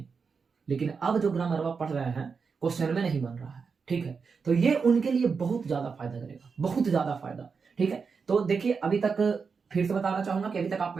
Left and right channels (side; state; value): left; quieter; 5.4 dB